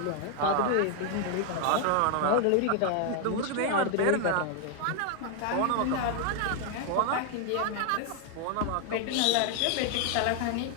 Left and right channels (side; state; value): both; different; correlation 0.00